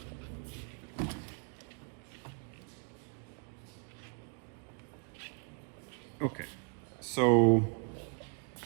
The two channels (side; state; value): left; quieter; 37.3 dB